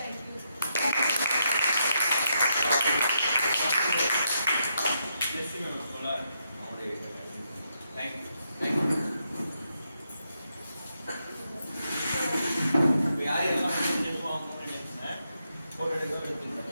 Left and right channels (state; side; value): inverted; both; correlation -0.81